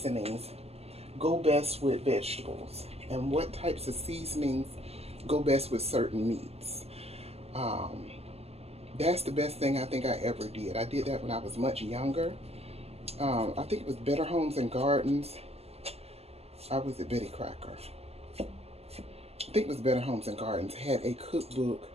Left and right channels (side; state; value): left; late; 0.29 ms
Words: go best with vegetables and what types of seasonings go best with certain meats. Um, that's the best thing I think I ever did. I did that when I was much younger. I think it was Better Homes and Gardens. I was at Betty Crocker. I think it was Better Homes and Gardens. Had a cookbook,